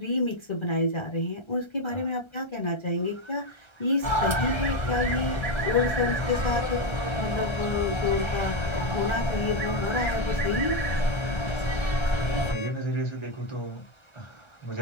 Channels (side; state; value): right; late; 1.3 ms